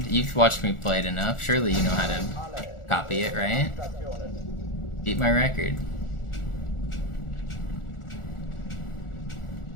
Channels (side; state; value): right; late; 1.4 ms